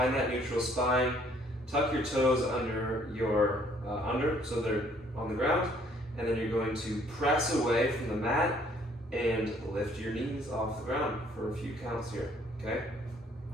that neutral spine, tuck your toes under your so they're on the ground, and then you're going to press away from the mat and lift your knees off the ground for a few counts here. Okay,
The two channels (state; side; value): normal; both; correlation 0.62